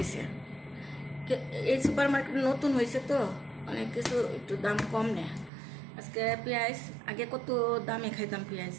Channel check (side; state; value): left; drops out; at 5.5 s